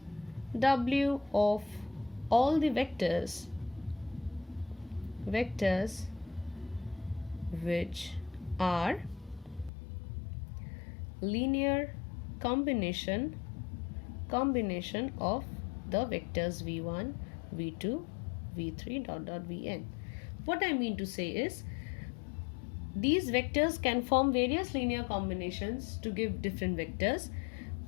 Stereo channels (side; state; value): right; drops out; at 9.7 s